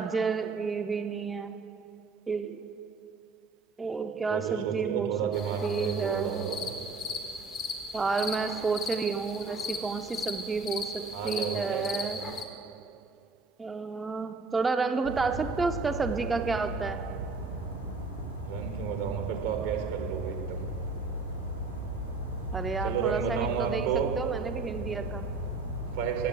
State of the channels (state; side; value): quieter; left; 4.1 dB